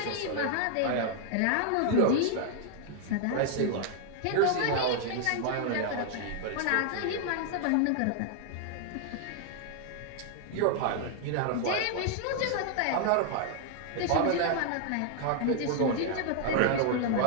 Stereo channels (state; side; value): different; both; correlation 0.00